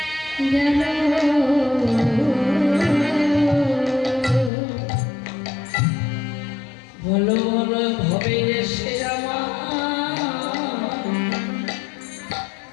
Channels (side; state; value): right; drops out; at 4.5 s